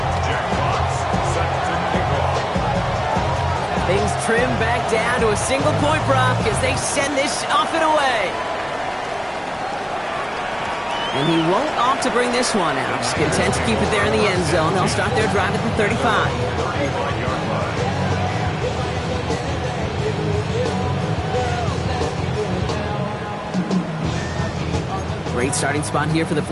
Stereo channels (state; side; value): identical; both; correlation 1.00